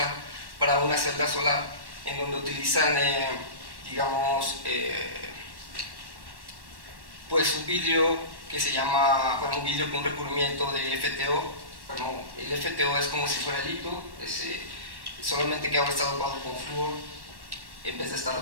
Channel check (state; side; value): late; left; 1.1 ms